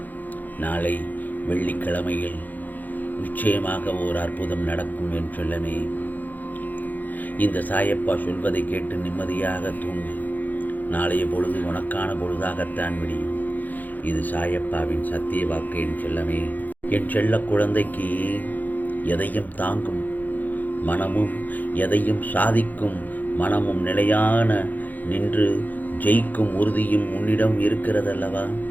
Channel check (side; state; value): right; late; 0.083 ms